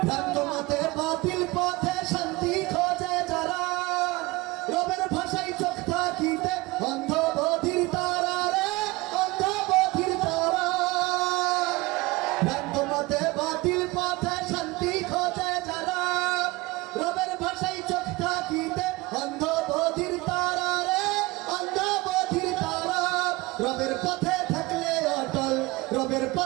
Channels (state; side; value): quieter; left; 22.2 dB